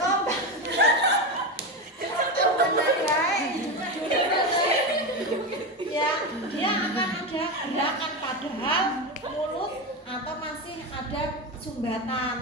Padahal mulut atau masih ada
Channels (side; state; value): both; normal; correlation 0.17